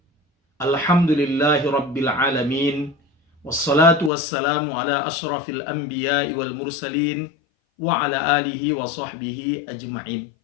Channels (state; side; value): drops out; right; at 4.1 s